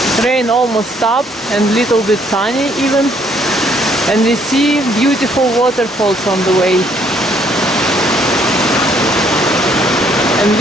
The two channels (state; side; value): normal; both; correlation 0.66